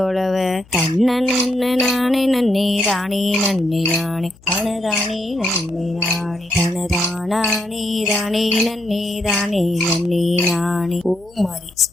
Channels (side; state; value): left; noise; hum, 27 dB below the sound